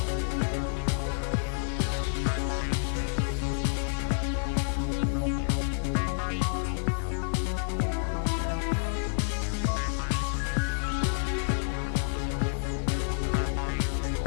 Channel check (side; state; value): right; silent; digital silence